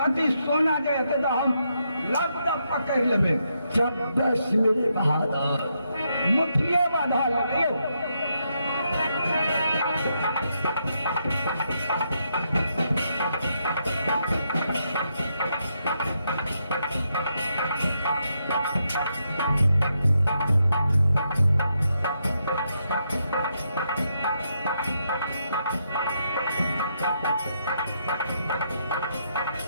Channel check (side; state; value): both; inverted; correlation -0.80